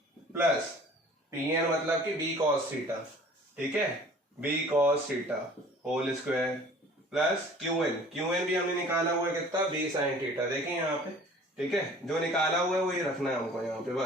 प्लस PN मतलब कि B cos थीटा, ठीक है, B cos theta whole square plus QN भी हमने निकाला हुआ है कितना, B sin थीटा, देखिए यहाँ पे, ठीक है, जो निकाला हुआ है वही रखना है हमको यहाँ पे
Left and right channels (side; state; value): both; normal; correlation 0.49